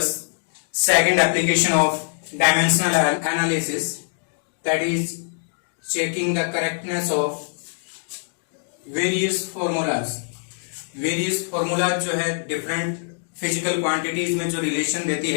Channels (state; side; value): silent; right; digital silence